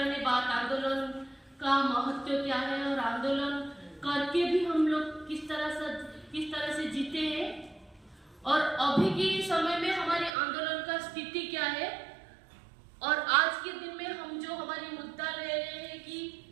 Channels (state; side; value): drops out; left; at 10.3 s